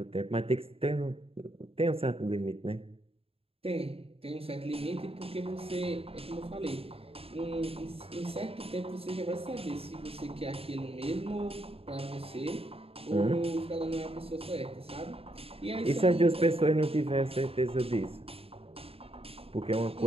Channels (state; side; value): late; left; 0.28 ms